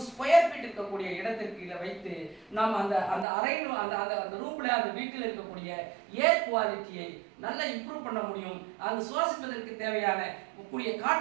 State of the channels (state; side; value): drops out; left; at 3.2 s